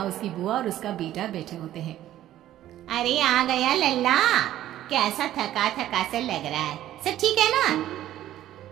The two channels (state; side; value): quieter; left; 13.0 dB